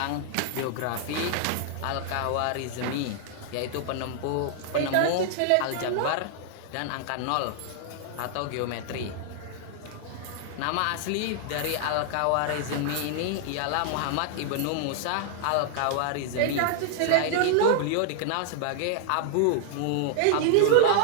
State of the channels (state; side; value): different; both; correlation -0.01